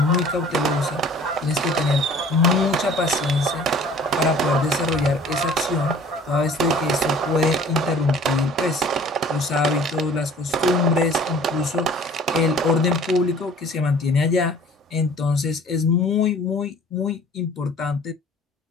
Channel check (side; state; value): both; normal; correlation 0.49